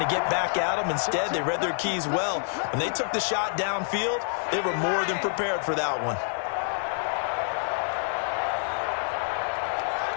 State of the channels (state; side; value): silent; right; digital silence